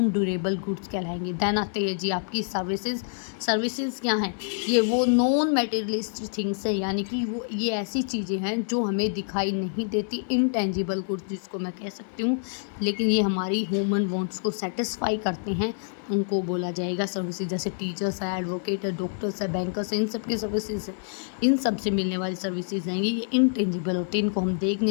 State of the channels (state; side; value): silent; right; digital silence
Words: ड्यूरेबल गुड्स कहलाएंगे। देन आते हैं जी आपकी सर्विसेज। सर्विसेज क्या हैं, ये वो नॉन मटेरियलिस्टिक थिंग्स है, यानी कि वो ये ऐसी चीज़ें हैं जो हमें दिखाई नहीं देती, इनटेंजिबल गुड्स जिसको मैं कह सकती हूँ, लेकिन ये हमारी ह्यूमन वांट्स को सेटिस्फाई करते हैं, उनको बोला जाएगा सर्विसेज। जैसे टीचर्स है, एडवोकेट है, डॉक्टर्स है, बैंकर्स है, इन सब की सर्विसेज है, इन सब से मिलने वाली सर्विसेज हैं, ये इनटेंजिबल होते हैं, इनको हम देख